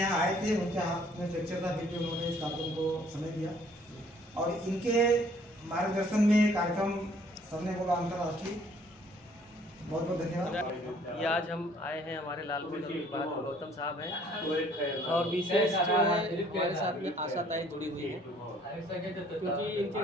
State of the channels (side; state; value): both; normal; correlation 0.60